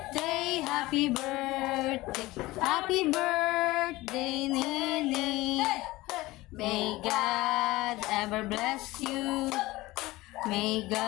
happy birthday, happy birthday, Nini. May God ever bless you. May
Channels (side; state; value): right; quieter; 19.3 dB